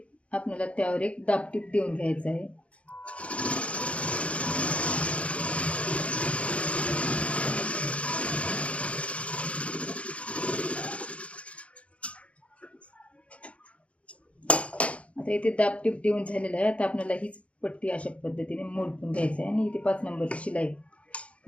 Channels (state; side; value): late; right; 0.063 ms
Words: आपल्याला त्यावर एक दाबटीप देऊन घ्यायचं आहे. आता इथे दाबटीप देऊन झालेलं आहे. आता आपल्याला हीच पट्टी अशा पद्धतीने मोडून घ्यायचं आहे आणि इथे 5 नंबरची शिलाई